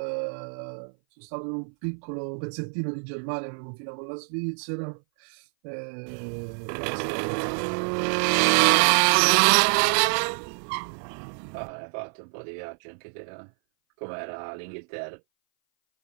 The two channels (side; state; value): left; silent; 58 dB below the other